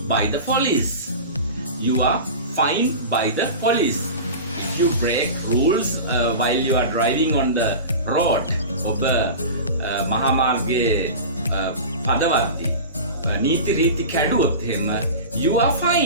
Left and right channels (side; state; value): both; inverted; correlation -0.31